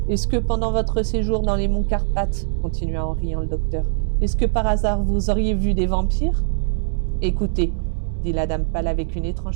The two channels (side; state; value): left; silent; digital silence